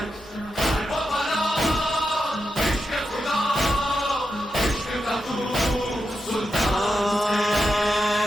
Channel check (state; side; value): normal; both; correlation 0.87